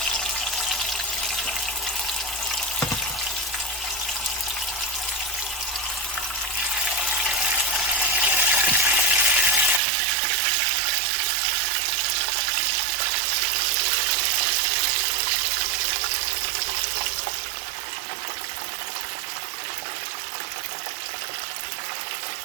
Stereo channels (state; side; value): drops out; left; at 9.8 s